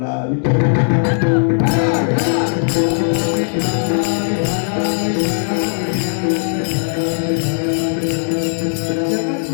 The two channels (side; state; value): right; silent; digital silence